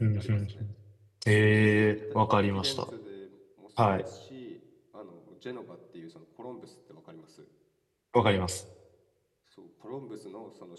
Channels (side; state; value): both; identical; correlation 1.00